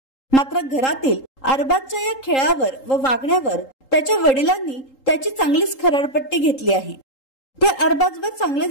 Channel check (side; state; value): right; late; 3.8 ms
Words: मात्र घरातील अरबाजच्या या खेळावर व वागण्यावर त्याच्या वडिलांनी त्याची चांगलीच खरडपट्टी घेतली आहे। ते अरबाजवर